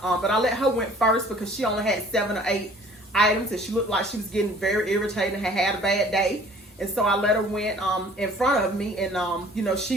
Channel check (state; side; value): normal; both; correlation 0.52